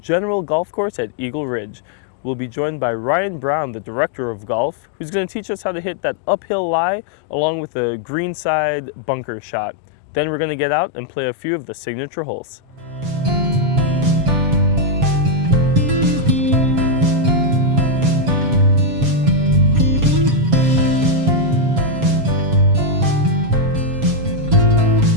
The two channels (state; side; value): late; left; 7.2 ms